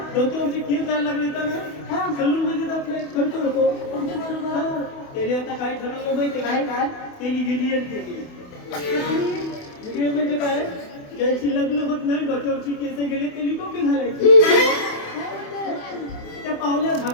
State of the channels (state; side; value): late; right; 28 ms